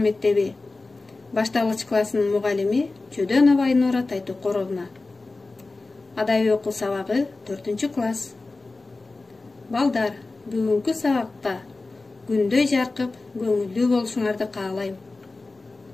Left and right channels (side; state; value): right; quieter; 3.4 dB